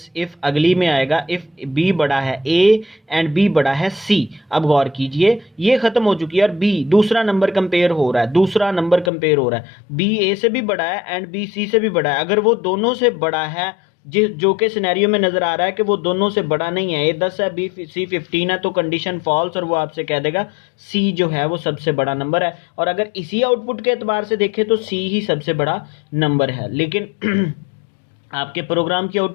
इफ, अगली में आएगा इफ बी बड़ा है ए एंड बी बड़ा है सी। अब गौर कीजिए ये खत्म हो चुकी है और बी दूसरा नंबर कंपेयर हो रहा है, दूसरा नंबर कंपेयर हो रहा है, बी ए से भी बड़ा है एंड बी सी से भी बड़ा है। अगर वो दोनों से बड़ा है, जो के सिनेरियो में नजर आ रहा है कि वो दोनों से बड़ा नहीं है, ए 10 है बी सी 15 है, तो कंडीशन फॉल्स, और वो आपसे कह देगा सी जो है वो सबसे बड़ा नंबर है। और अगर इसी आउटपुट के एतबार से देखें तो सी ही सबसे बड़ा नंबर है। लेकिन आपके प्रोग्राम की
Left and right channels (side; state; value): right; drops out; at 9.1 s